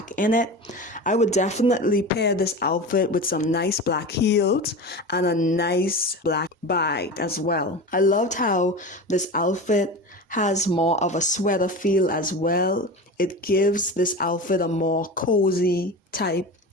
in it. I would definitely pair this outfit with some nice black heels and a nice black bag as well. I loved how this outfit has more of a sweater feel as well. It gives this outfit a more cozy type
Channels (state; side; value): normal; both; correlation 0.29